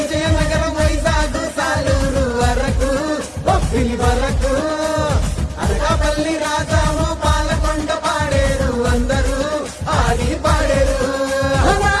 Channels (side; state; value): both; identical; correlation 1.00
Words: వైజాగ్ సాలూరు వరకు బొబ్బిలి వరకు అనకాపల్లి రాజాము పాలకొండ పాడేరు అందరూ ఆడి పాడేరు